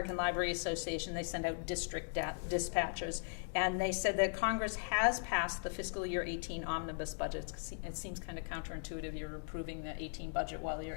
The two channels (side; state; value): right; silent; digital silence